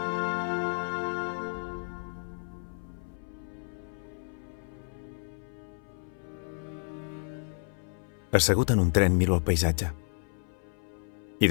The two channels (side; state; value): right; silent; 57 dB below the other